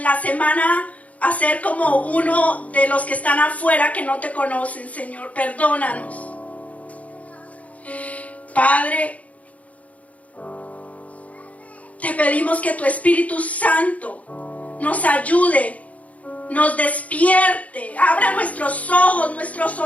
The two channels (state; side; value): late; right; 0.068 ms